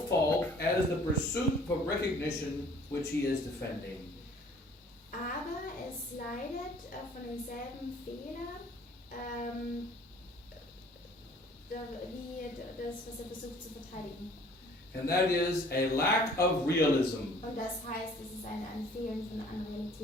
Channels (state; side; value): normal; both; correlation 0.54